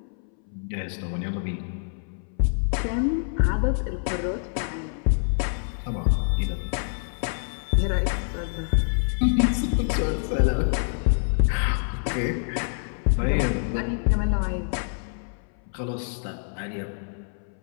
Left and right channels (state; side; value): silent; right; 61 dB below the other